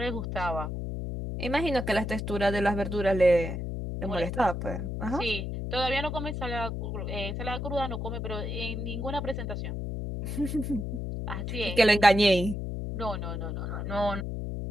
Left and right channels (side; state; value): left; noise; hum, 4 dB below the sound